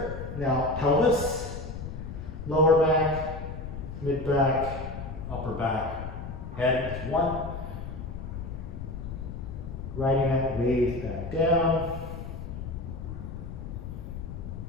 Now pelvis, lower back, mid back, upper back, head. 1. Riding that wave back down.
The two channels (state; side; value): noise; left; rumble, 8 dB below the sound